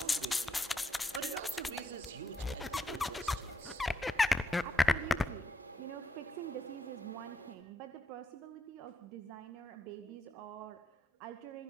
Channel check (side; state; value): both; normal; correlation 0.80